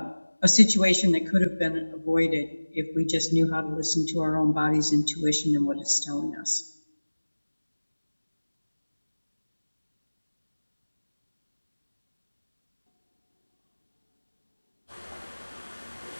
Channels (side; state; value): both; inverted; correlation -1.00